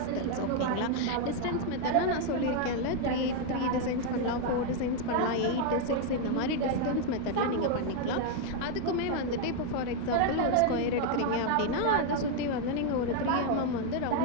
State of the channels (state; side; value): different; both; correlation 0.00